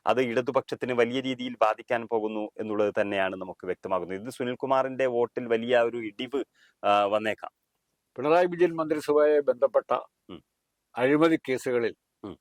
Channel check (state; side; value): identical; both; correlation 1.00